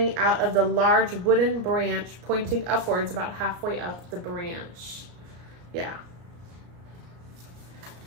out of the large wooden branch, pointing upwards about halfway up the branch. Yeah.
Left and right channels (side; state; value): left; late; 34 ms